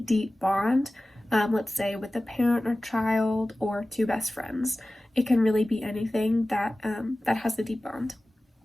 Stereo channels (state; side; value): normal; both; correlation 0.97